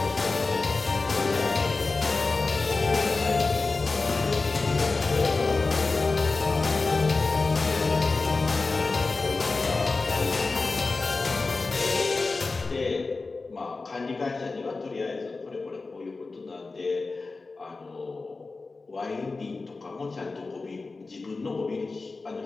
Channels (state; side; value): quieter; right; 3.8 dB